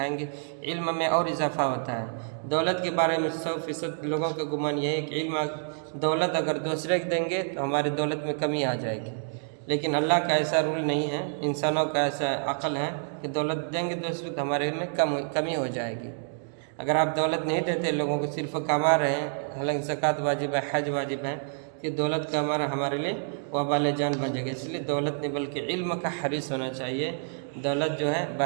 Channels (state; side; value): silent; left; digital silence